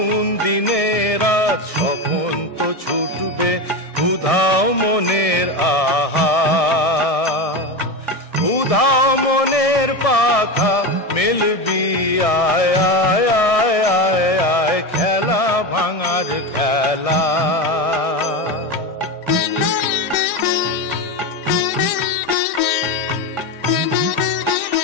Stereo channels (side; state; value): right; late; 1.6 ms